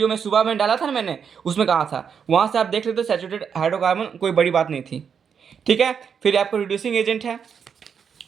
में सुबह में डाला था ना मैंने, उसमें कहा था। वहाँ से आप देख लेते, सैचुरेटेड हाइड्रोकार्बन कोई बड़ी बात नहीं थी। ठीक है। फिर आपको रिड्यूसिंग एजेंट है,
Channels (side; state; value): left; quieter; 7.0 dB